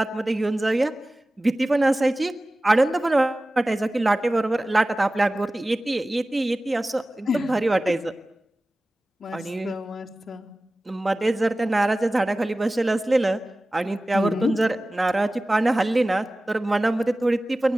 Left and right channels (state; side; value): normal; both; correlation 0.97